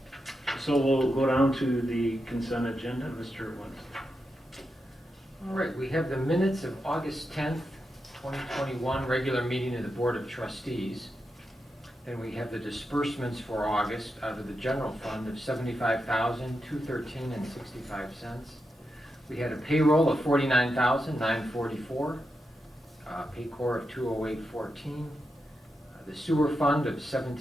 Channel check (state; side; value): normal; both; correlation 0.87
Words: so we'll go down to the consent agenda, Mr. Winston. All right, we have the minutes of August 10th, 2021, regular meeting of the Board of Trustees. Then we have the disbursements for August out of the general fund of $75,213.65. We had a payroll of $49,944, Paycor of $208.14, the sewer fund of